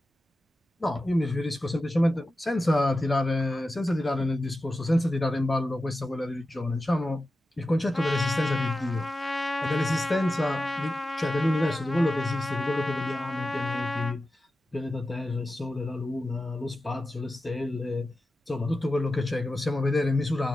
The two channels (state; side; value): normal; both; correlation 0.92